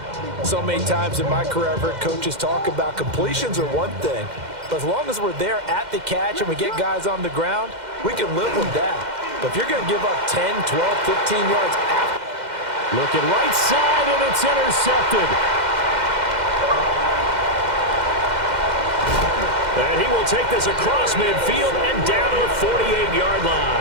So many times in my career, I've heard coaches talk about completions are one thing, But as long as we're there at the catch and we get guys on the ground, we can live with that. But if you're going to give up 10, 12, 15 yards after. Looking right side, and it's intercepted. And he will take this across midfield and down to the 48-yard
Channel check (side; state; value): left; late; 2.1 ms